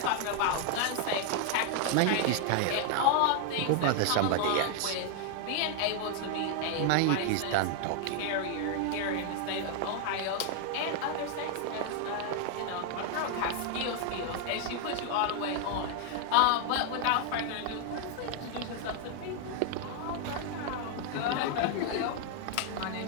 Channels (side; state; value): both; different; correlation 0.00